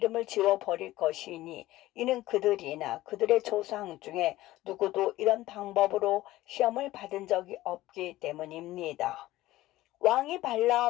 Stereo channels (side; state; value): right; quieter; 16.6 dB